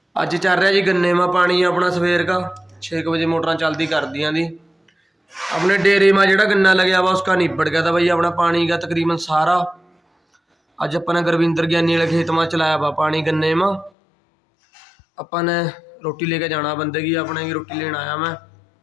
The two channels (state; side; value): drops out; right; at 13.9 s